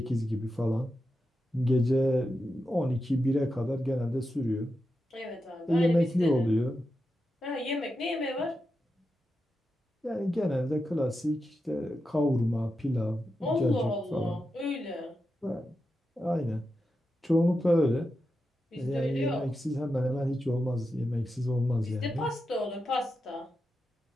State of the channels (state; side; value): normal; both; correlation 0.89